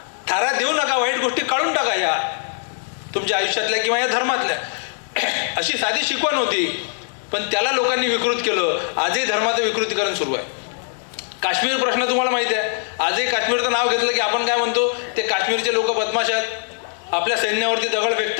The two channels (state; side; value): silent; right; 59 dB below the other